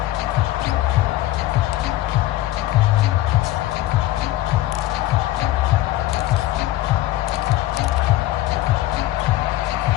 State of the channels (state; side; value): quieter; right; 15.3 dB